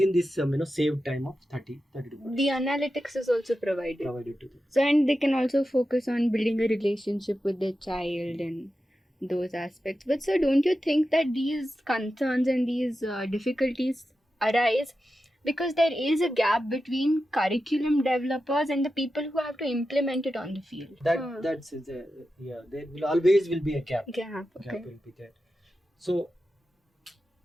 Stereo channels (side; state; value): both; normal; correlation 0.91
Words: this saved time of 30 to 40. The analytics is also provided to them. So, and they can also focus on building a relationship with their child and those aspects. But sir, don't you think that these concerns and these difficulties arise because there is a gap between curriculum developers and the people who have to implement it on the field? That's there will always be a gap. Gap Will be there. So